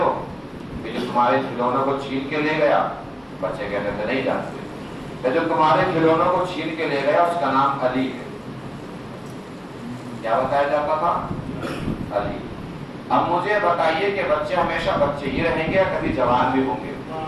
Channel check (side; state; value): both; identical; correlation 1.00